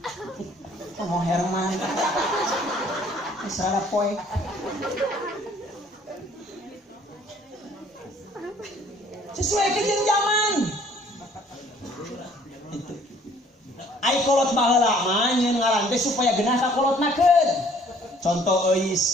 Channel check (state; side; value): normal; both; correlation 0.58